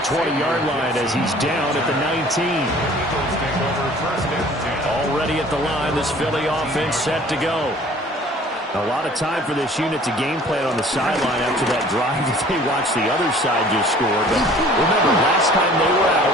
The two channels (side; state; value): both; normal; correlation 0.51